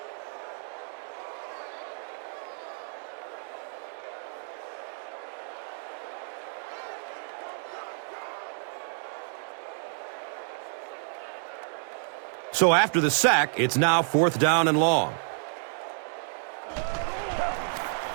So after the sack, it's now 4th down and long.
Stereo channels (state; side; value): silent; left; digital silence